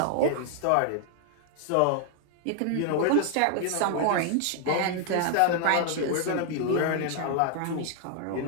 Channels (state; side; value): different; both; correlation 0.00